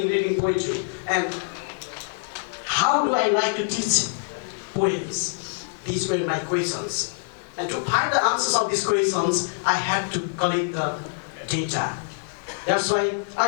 reading poetry? And how do I like to teach poems? These were my questions. And to find the answers of these questions, I had to collect the data. That's why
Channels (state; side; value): silent; right; digital silence